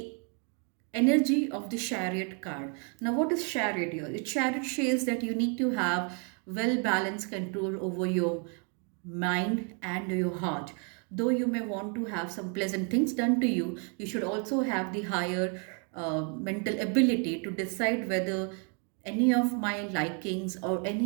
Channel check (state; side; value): quieter; left; 39.1 dB